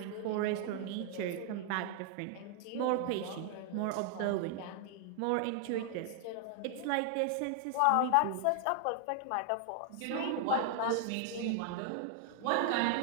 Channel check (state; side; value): different; both; correlation 0.00